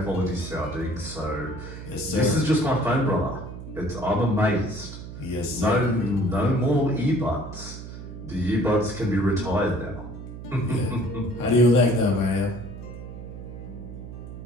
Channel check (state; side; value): noise; right; hum, 11 dB below the sound